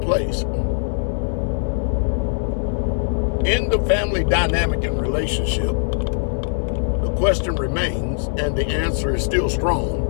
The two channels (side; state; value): right; silent; 65 dB below the other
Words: in the family dynamic and relationship, the question remains, and the answer is still strong: